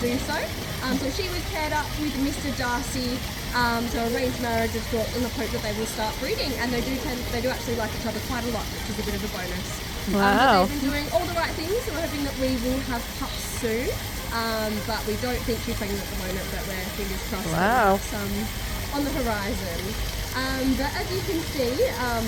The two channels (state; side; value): identical; both; correlation 1.00